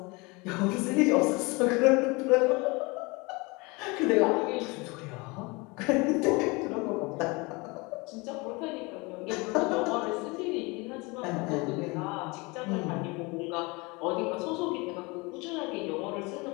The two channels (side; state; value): right; quieter; 26.2 dB